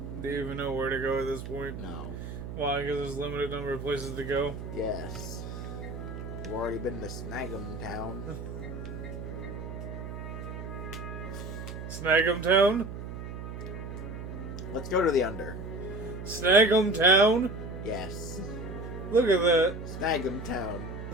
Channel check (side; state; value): right; noise; hum, 8 dB below the sound